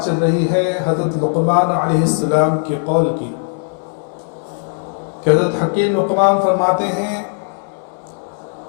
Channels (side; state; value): right; silent; digital silence